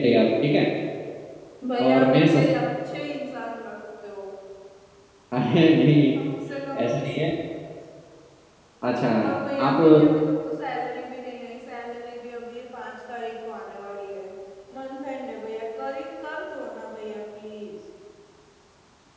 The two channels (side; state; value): both; identical; correlation 1.00